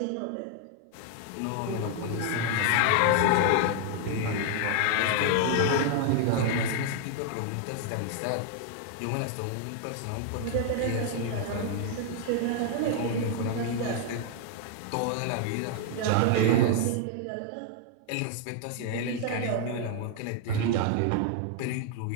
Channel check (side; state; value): both; different; correlation 0.00